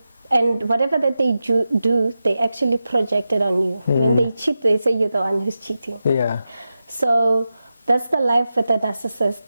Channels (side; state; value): both; inverted; correlation -0.92